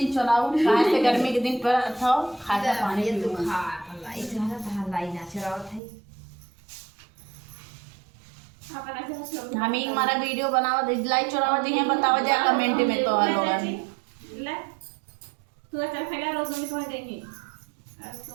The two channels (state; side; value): drops out; left; at 5.8 s